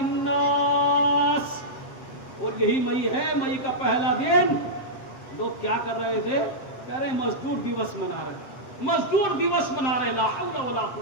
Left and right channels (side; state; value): right; late; 7.8 ms